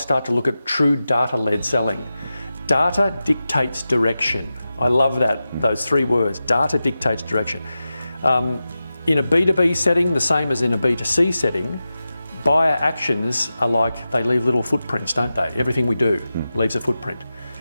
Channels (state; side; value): inverted; both; correlation -0.93